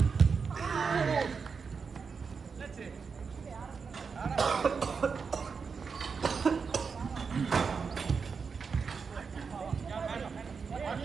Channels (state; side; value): quieter; left; 5.5 dB